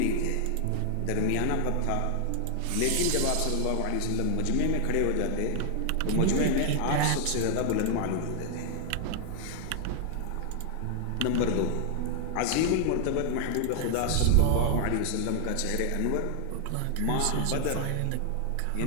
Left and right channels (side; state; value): both; different; correlation 0.00